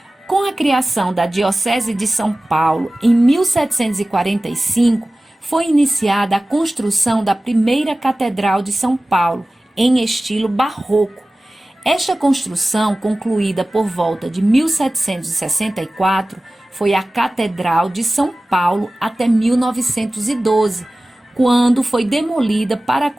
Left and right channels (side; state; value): both; normal; correlation 0.97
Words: Com a criação da Diocese de São Paulo, em 1745, foi iniciada a construção da primeira Catedral de São Paulo, em estilo barroco. Esta construção, concluída por volta de 1764, foi a Catedral de São Paulo até 1912, quando foi demolida para a